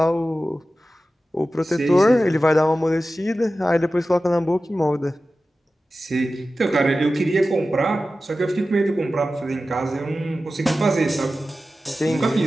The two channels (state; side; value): normal; both; correlation 0.94